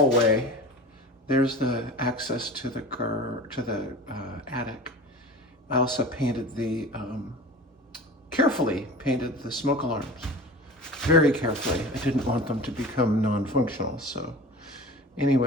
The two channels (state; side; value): normal; both; correlation 0.36